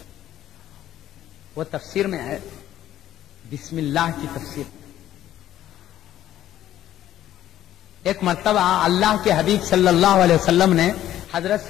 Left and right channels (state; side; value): quieter; right; 12.4 dB